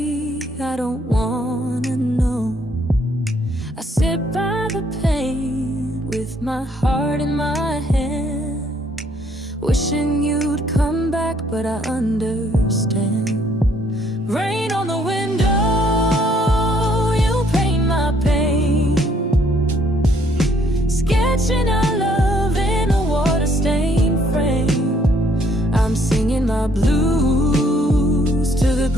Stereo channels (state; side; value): normal; both; correlation 0.66